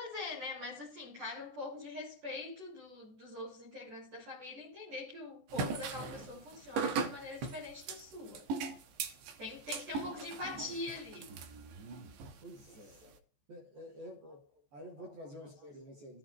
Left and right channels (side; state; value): left; late; 14 ms